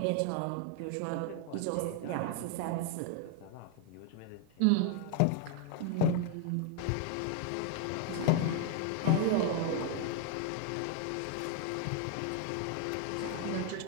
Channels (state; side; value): different; both; correlation 0.00